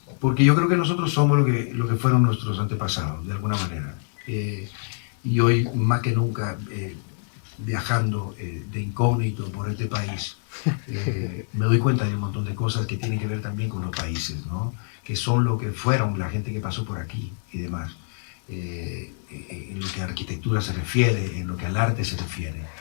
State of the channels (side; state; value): right; silent; 61 dB below the other